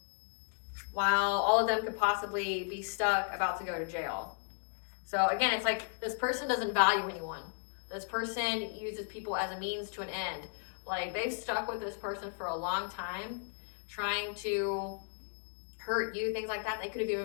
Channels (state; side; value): silent; right; 55 dB below the other